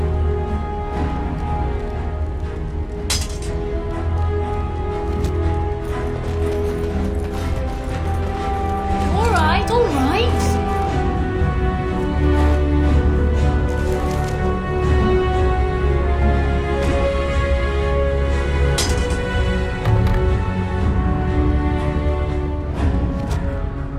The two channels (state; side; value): identical; both; correlation 1.00